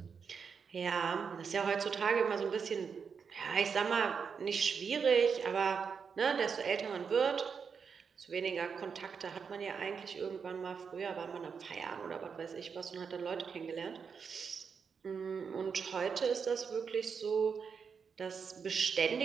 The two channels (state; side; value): quieter; left; 6.1 dB